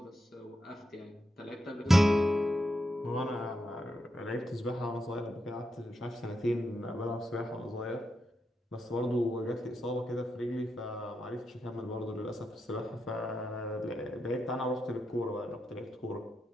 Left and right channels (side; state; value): both; normal; correlation 0.85